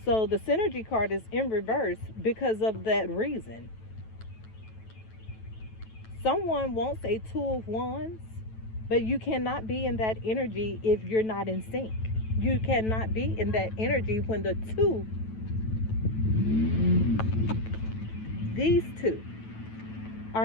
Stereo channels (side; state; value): right; late; 9.1 ms